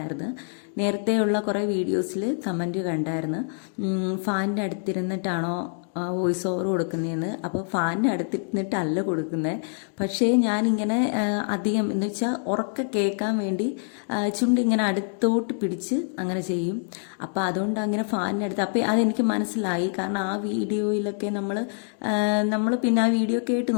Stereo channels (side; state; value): right; silent; 61 dB below the other